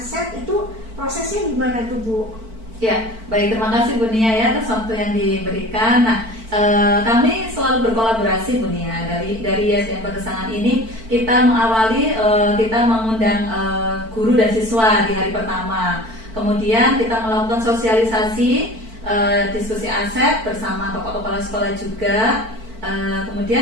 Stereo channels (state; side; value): late; left; 4.5 ms